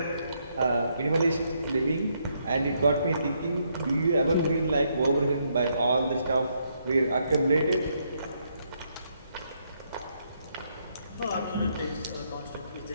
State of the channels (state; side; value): inverted; both; correlation -0.75